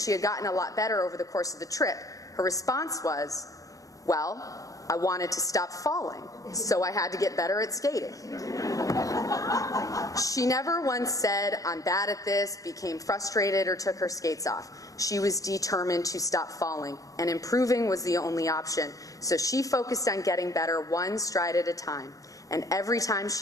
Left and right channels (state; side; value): late; right; 0.16 ms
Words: had gotten a lot better over the course of the trip, her response was, "Well, I wanted to stop falling, so I had to get better at skating." She never once said, "I'm bad at this," became frustrated, or took her skates off. She was determined to stop falling, and improving was the only option. So she focused on getting better one stride at a time, and every time